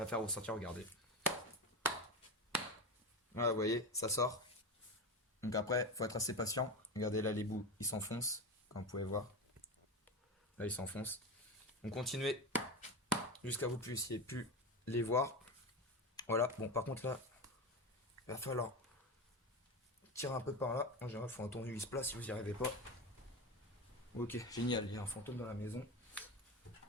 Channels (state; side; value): normal; both; correlation 0.21